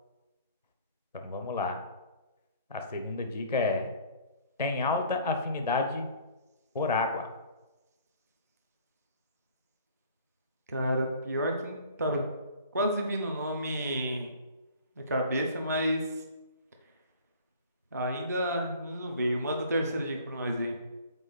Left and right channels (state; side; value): inverted; both; correlation -0.51